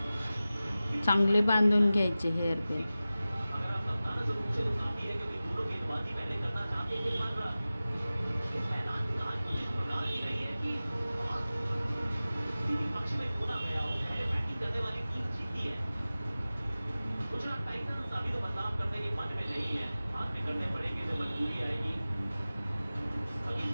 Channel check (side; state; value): both; inverted; correlation -0.96